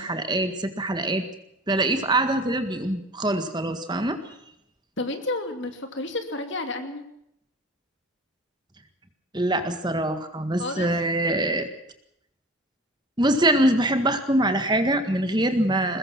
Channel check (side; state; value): both; normal; correlation 0.41